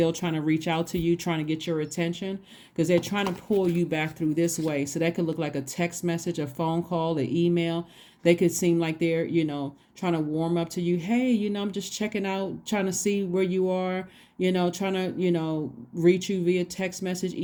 trying to reach out to you, trying to get your attention because they're trying to pull you back through this way. So that could look like a text message, a phone call, an email. They could seem like they're, trying to warm up to you. Hey, I'm just checking out, trying to see where you are, trying to, reach you via text message,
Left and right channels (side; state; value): both; identical; correlation 1.00